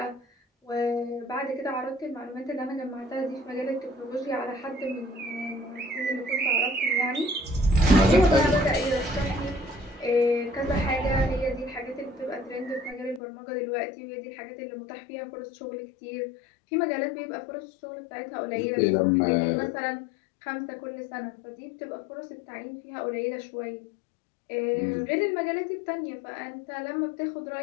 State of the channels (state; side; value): drops out; right; at 13.2 s